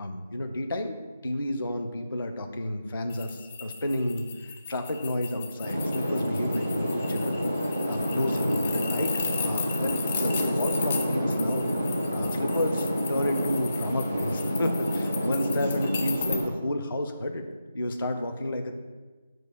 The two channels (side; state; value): both; inverted; correlation -0.87